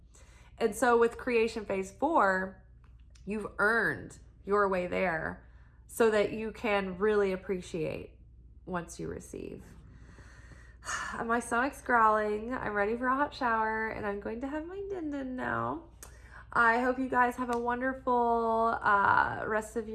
And so with creation phase 4, you've earned your way there so that you can really appreciate once you receive. My stomach's growling. I'm ready for a hot shower, and I'm going to have my din-din now. I hope you guys have a wonderful rest of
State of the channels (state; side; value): identical; both; correlation 1.00